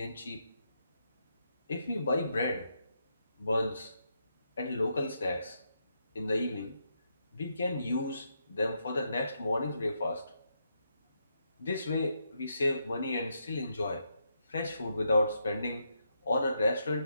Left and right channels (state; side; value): inverted; both; correlation -0.80